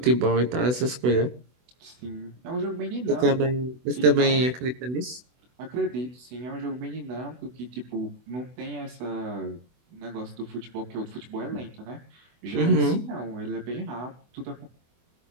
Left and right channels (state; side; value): late; left; 24 ms